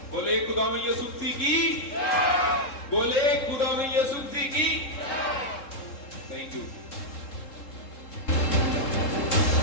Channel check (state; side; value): late; right; 3.7 ms